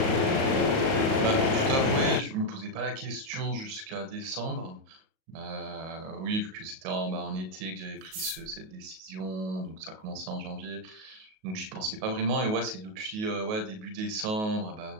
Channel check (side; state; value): left; late; 37 ms